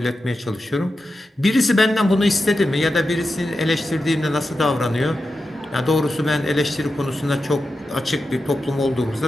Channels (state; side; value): normal; both; correlation 0.90